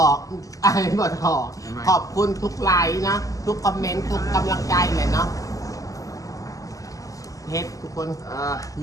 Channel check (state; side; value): late; right; 0.17 ms